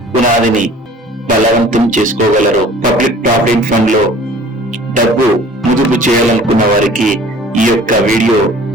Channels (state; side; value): normal; both; correlation 0.48